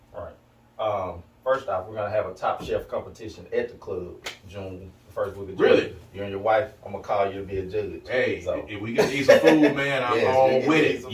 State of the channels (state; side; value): identical; both; correlation 1.00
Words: First off, we're going to have a top chef competition at the club June, the first week of June. Really? You and your wife, I'm going to call you to be a judge. Hey, so if we can eat some food, man, I'm all with it.